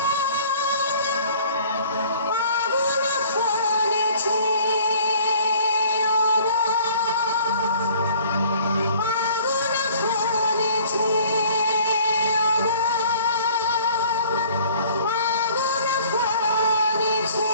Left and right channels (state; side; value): inverted; both; correlation -0.53